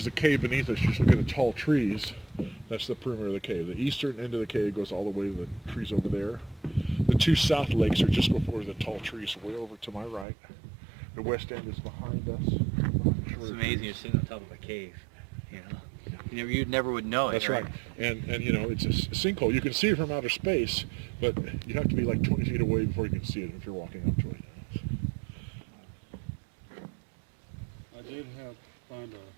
the cave beneath us, just look at the tall trees. That's the perimeter of the cave. The eastern end of the cave goes all the way to the trees over there. The 2 south lakes are just before the tall trees, way over to my right. The west end is behind us. It's amazing you're sitting on top of a cave, You never would know it. That's right. And it's a sinkhole. You can see it from outer space, but you have to be like 20 feet away before you can see it if you're walking up to it. I did find a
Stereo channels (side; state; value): left; drops out; at 10.2 s